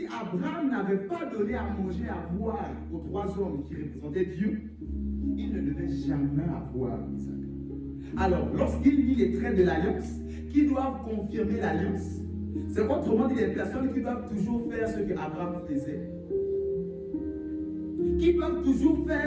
Abraham n'avait pas donné à manger, à boire aux 3 hommes qui représentaient Dieu, il ne devait jamais avoir Isaac. Alors, lorsqu'il lit les traits de l'alliance, qui doivent confirmer l'alliance, c'est autrement dit des personnes qui doivent toujours faire ce que Abraham faisait. Qui doivent toujours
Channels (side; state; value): both; identical; correlation 1.00